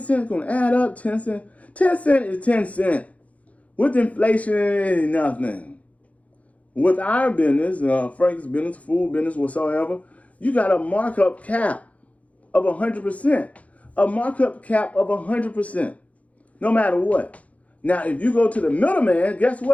is going to add up. 10 cents. 10 cents is 10 cents. With inflation, it ain't nothing. With our business, Frank's business, food business, whatsoever, you got a markup cap of 100%. A markup cap of 100%. No matter what. Now, if you go to the middleman, guess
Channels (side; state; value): right; late; 0.067 ms